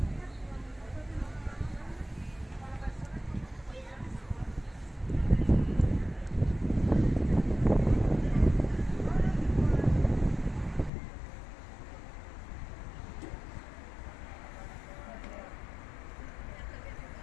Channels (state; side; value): drops out; right; at 10.9 s